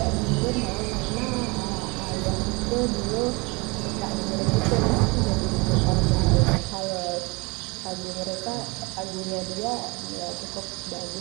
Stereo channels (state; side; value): quieter; left; 27.2 dB